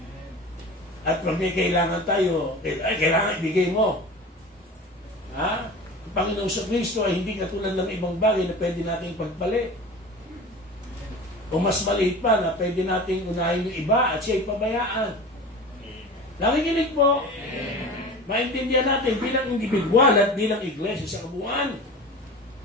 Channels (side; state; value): both; normal; correlation 0.35